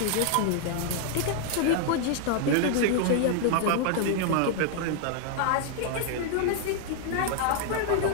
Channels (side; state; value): both; different; correlation 0.00